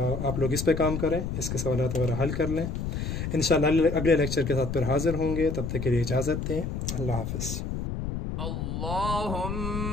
लोग इस पे काम करें, इसके सवालात वगैरह हल कर लें। इंशाल्लाह अगले लेक्चर के साथ फिर हाजिर होंगे। तब तक के लिए इजाज़त दें। अल्लाह हाफ़िज़।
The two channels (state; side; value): noise; left; rumble, 3 dB below the sound